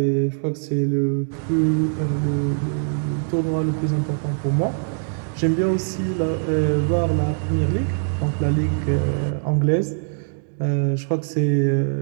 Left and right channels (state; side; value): silent; left; digital silence